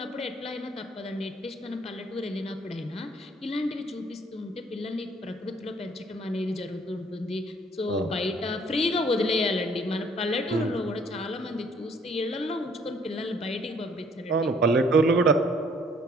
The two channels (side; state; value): both; normal; correlation 0.60